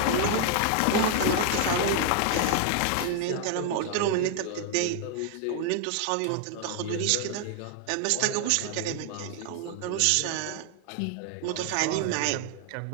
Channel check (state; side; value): different; both; correlation 0.00